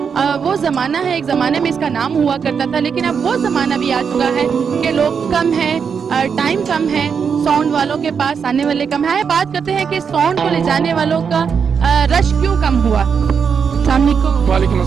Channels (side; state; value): left; quieter; 6.5 dB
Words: वो ज़माना है, एक ज़माने में इसका नाम हुआ करता था, लेकिन अब वो ज़माना भी आ चुका है कि लोग कम हैं, टाइम कम है, साउंड वालों के पास आने वाले कम है। बात करते हैं कि साउंड को ले जाने वालों का रश क्यों कम हुआ। अस्सलाम वालेकुम। वालेकुम